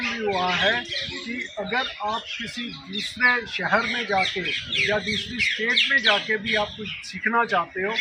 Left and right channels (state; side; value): identical; both; correlation 1.00